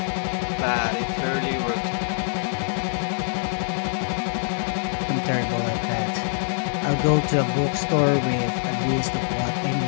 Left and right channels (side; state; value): right; silent; 62 dB below the other